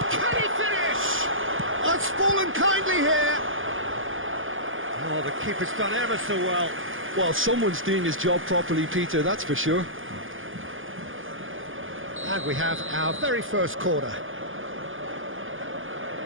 Can he finish? Oh, it's fallen kindly here. Oh, the keeper's done ever so well. Well, someone's doing his job properly, Peter, that's for sure. And we have our very first corner.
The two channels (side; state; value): left; late; 0.58 ms